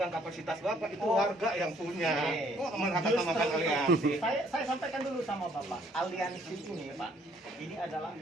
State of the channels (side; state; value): both; normal; correlation 0.64